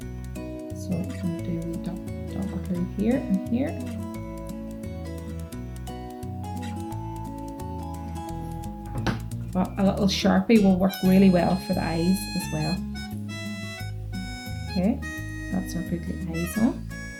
So I'm going to do double glue here and here. But a little Sharpie will work really well for the eyes as well. Okay, so that's our googly eyes on.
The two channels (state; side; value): identical; both; correlation 1.00